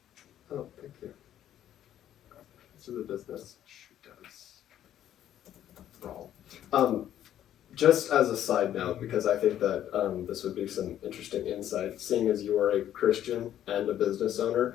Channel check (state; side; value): quieter; right; 11.3 dB